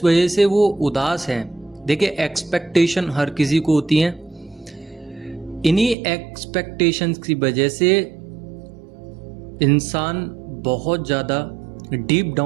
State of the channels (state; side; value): drops out; left; at 6.0 s